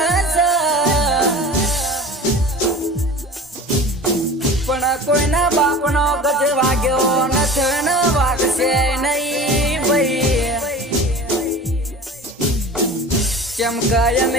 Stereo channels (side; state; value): both; normal; correlation 0.38